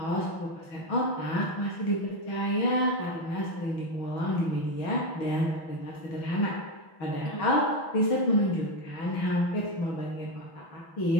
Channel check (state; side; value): late; right; 6.1 ms